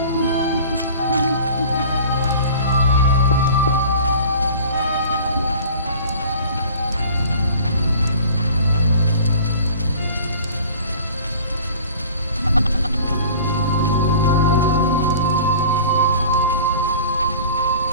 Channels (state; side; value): inverted; both; correlation -0.44